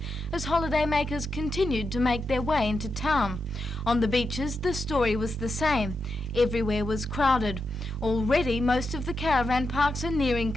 as holidaymakers continued to make their way into town. On the beaches, the story was the same. Everywhere was crowded. Already, most of the caravan parks are nearing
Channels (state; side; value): normal; both; correlation 0.86